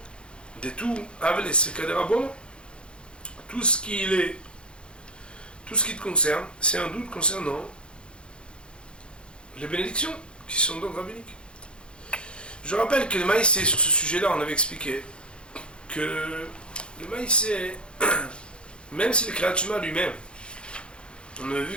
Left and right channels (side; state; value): right; late; 0.055 ms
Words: des tout, avec les sekadérabon, tout ce qui te concerne, c'est un doute concernant les bénédictions, qui sont donc rabbiniques. Je rappelle que le maïsé, sur ce sujet-là, on avait expliqué que le maïsé, même si le Kriyat Shema lui-même, on a